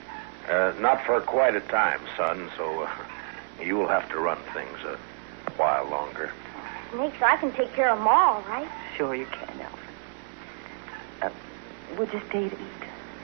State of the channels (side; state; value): left; silent; 59 dB below the other